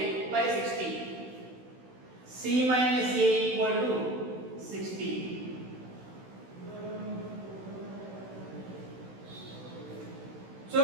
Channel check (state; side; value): late; left; 16 ms